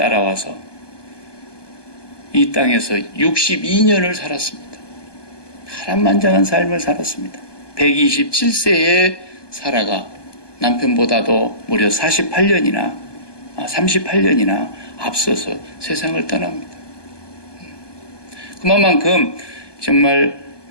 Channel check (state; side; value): late; right; 1.2 ms